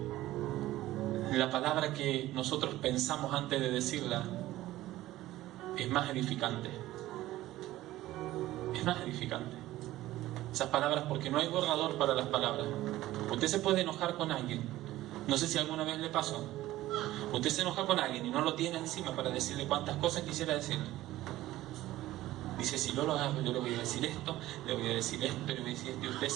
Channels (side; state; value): left; quieter; 15.8 dB